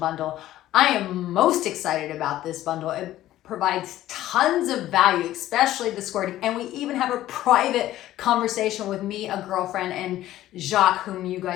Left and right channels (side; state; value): right; quieter; 14.2 dB